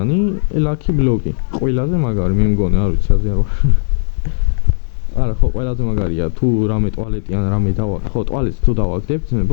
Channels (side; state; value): right; silent; digital silence